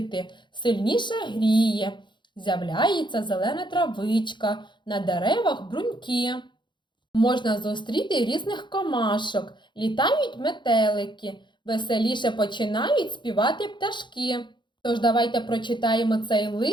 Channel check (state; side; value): late; right; 0.23 ms